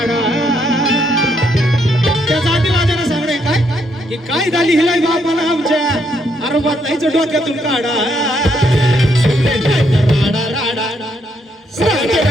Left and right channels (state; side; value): normal; both; correlation 0.74